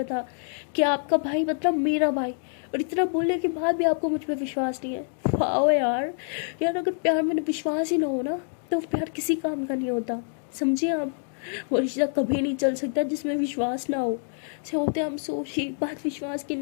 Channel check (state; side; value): silent; right; digital silence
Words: था कि आपका भाई मतलब मेरा भाई, और इतना बोलने के बाद भी आपको मुझ पर विश्वास नहीं है। वाह यार, यार अगर प्यार में विश्वास ही ना हो ना तो प्यार किसी काम का नहीं होता, समझिए आप। वो रिश्ता कभी नहीं चल सकता जिसमें विश्वास ना हो। से होते हम सोची बात विश्वास की